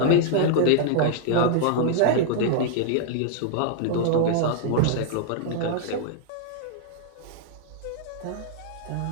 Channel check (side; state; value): both; different; correlation -0.01